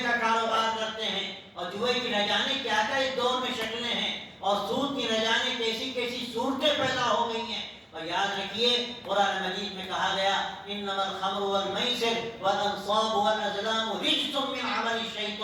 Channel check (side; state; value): both; identical; correlation 1.00